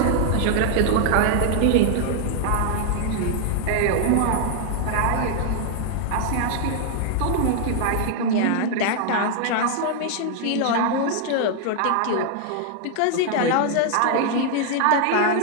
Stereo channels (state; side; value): different; both; correlation 0.00